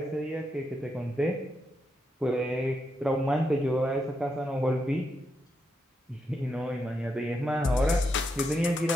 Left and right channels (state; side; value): normal; both; correlation 0.83